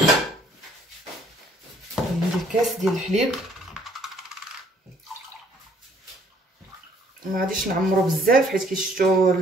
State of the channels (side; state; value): both; normal; correlation 0.62